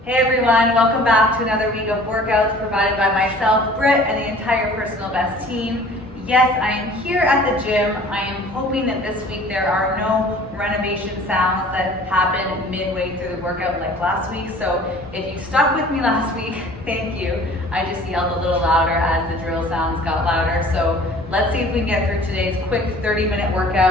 Hey everyone, welcome back to another week of workouts provided by myself, Britt, and the entire Personal Best team. Yes, I am here at the gym. I am hoping that this week there are no renovation sounds that happen midway through the workout like last week. So if you stuck with me last week, thank you. I just yelled a little louder as the drill sounds got louder. So let's see if we can get through today's quick 30-minute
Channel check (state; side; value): normal; both; correlation 0.48